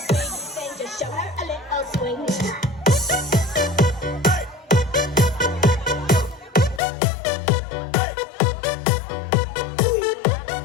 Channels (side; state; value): right; drops out; at 6.8 s